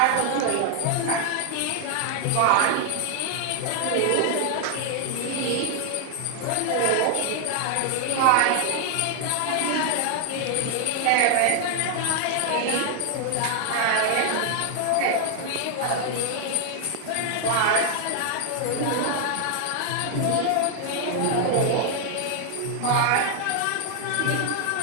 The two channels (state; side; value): different; both; correlation 0.00